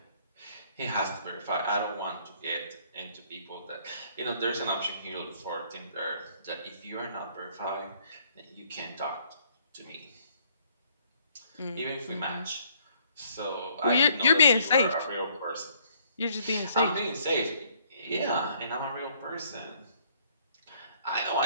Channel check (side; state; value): both; inverted; correlation -0.64